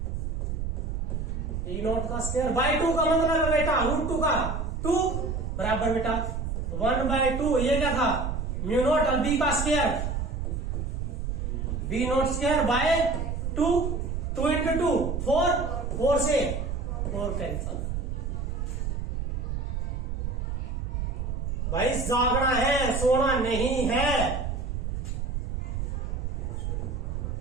ई नॉट का स्क्वायर बाय 2 का मतलब है बेटा √2 का 2 बराबर बेटा 1/2 ये क्या था म्यू नॉट और बी का square B not square by 2 2 into 2 4 से 4 कैंसल। भाई जागना है सोना नहीं है।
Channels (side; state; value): right; noise; rumble, 2 dB below the sound